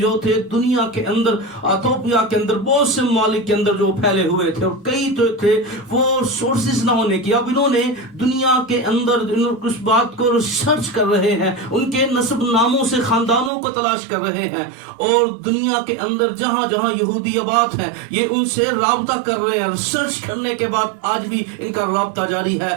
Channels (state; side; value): drops out; left; at 13.5 s